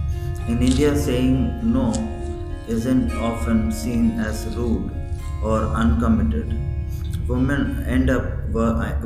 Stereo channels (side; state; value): both; identical; correlation 1.00